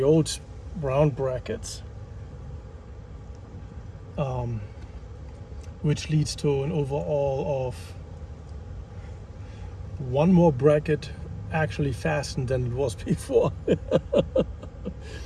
old round brackets, which leads to an overall of 1 more bracket actually fastened than it was before.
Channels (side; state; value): both; identical; correlation 1.00